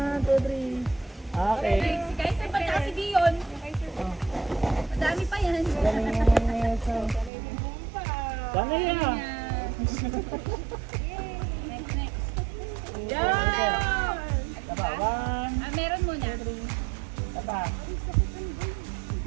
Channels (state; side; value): drops out; left; at 7.3 s